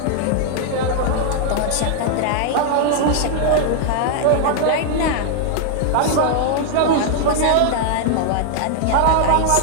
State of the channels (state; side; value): different; both; correlation -0.01